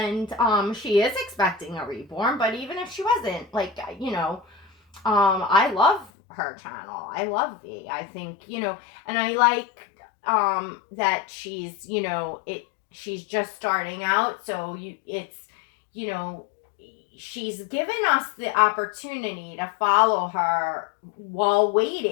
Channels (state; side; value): drops out; right; at 6.1 s